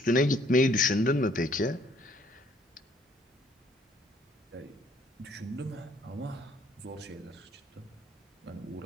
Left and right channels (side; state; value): both; normal; correlation 0.63